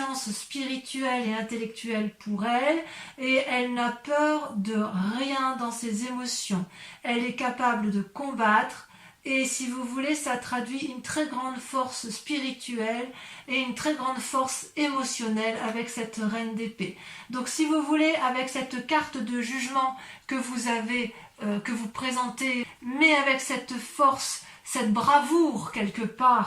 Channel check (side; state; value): both; identical; correlation 1.00